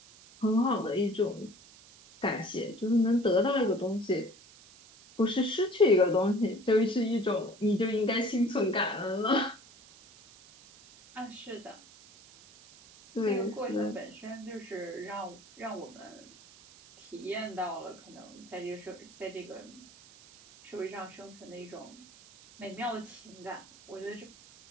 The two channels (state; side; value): noise; right; hiss, 22 dB below the sound